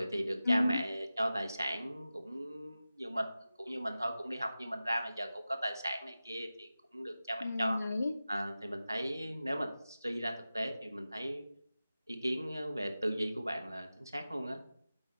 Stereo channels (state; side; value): inverted; both; correlation -0.94